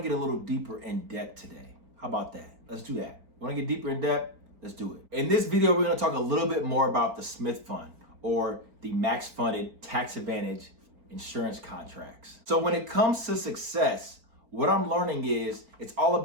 get a little deeper in depth today. How about that? Let's do that. You wanna get deeper in depth? Let's do it. In this video, we're gonna talk a little bit more about the Smith Fund or the max funded tax advantage insurance contracts. So when it comes to success, what I'm learning is it's all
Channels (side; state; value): left; late; 4.4 ms